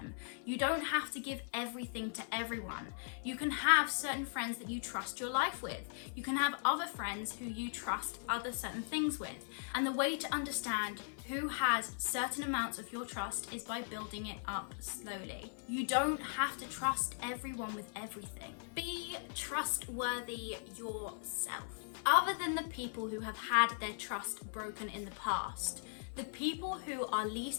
You don't have to give everything to everyone. You can have certain friends that you trust your life with. You can have other friends who you trust other certain things with. And the way to understand who has certain amounts of your trust is by building it up slowly. You don't have to trust everyone with everything. Be trustworthy yourself. Other than the people who have had their trust broken in the past, the people who are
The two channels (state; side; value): silent; right; 52 dB below the other